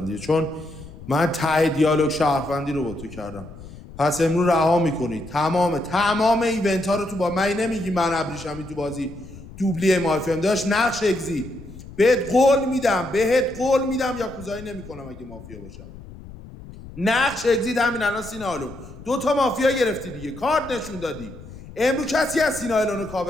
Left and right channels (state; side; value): noise; left; rumble, 16 dB below the sound